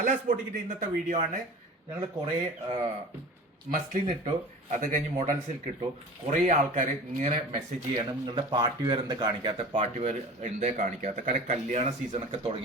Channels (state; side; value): normal; both; correlation 0.38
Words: ബോട്ടിക്കിന്റെ ഇന്നത്തെ video ആണ്. ഞങ്ങൾ കുറെ മസ്ലിൻ ഇട്ടു, അത് കഴിഞ്ഞ് മോഡൽ സിൽക്ക് ഇട്ടു. കുറെ ആൾക്കാർ ഇങ്ങനെ മെസ്സേജ് ചെയ്യാണ്, നിങ്ങളുടെ പാർട്ടി വെയർ എന്താ കാണിക്കാത്ത, പാർട്ടി വെയർ എന്താ കാണിക്കാത്ത. കാരണം കല്യാണ സീസൺ ഒക്കെ